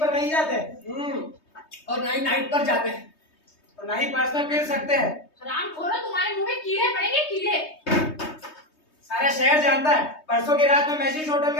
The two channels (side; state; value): right; late; 3.2 ms